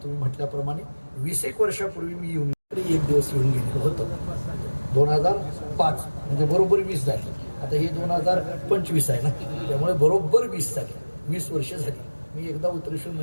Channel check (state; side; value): inverted; both; correlation -1.00